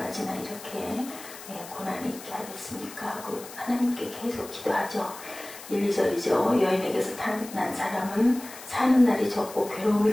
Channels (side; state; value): left; noise; hiss, 15 dB below the sound